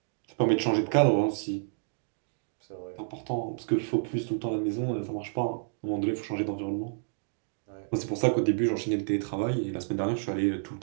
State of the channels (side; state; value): left; silent; digital silence